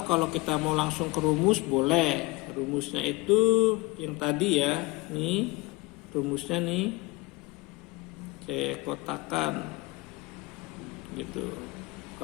kalau kita mau langsung ke rumus boleh. Rumusnya itu yang tadi ya. Nih rumusnya nih. Saya kotakan gitu.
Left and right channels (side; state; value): right; quieter; 23.7 dB